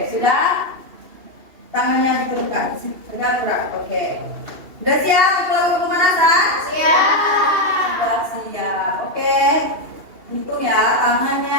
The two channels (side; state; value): left; late; 2.7 ms